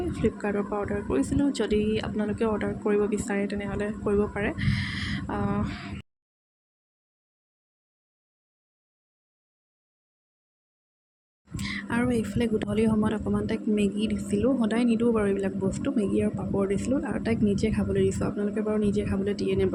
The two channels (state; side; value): identical; both; correlation 1.00